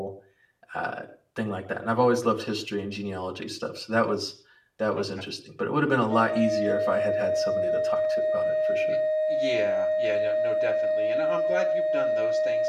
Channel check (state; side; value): identical; both; correlation 1.00